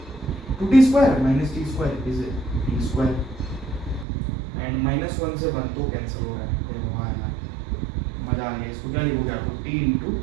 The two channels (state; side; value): drops out; left; at 4.0 s